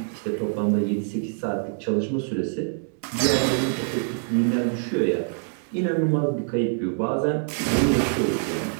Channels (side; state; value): left; silent; 62 dB below the other